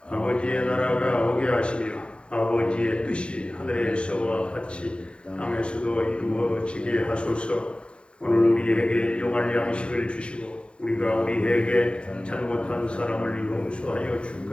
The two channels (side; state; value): right; late; 0.057 ms